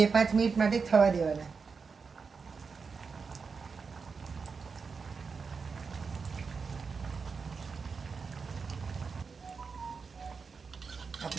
મિનિટ માટે થવા દેવાના.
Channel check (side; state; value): left; quieter; 5.2 dB